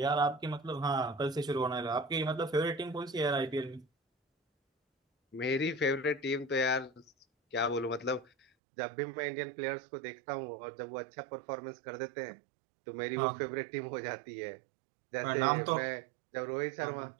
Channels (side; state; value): left; drops out; at 8.5 s